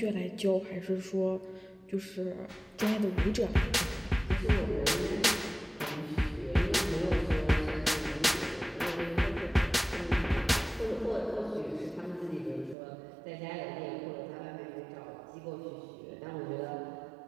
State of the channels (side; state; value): left; drops out; at 12.8 s